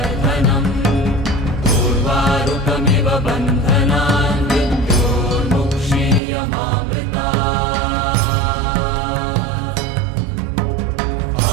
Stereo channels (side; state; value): left; drops out; at 6.2 s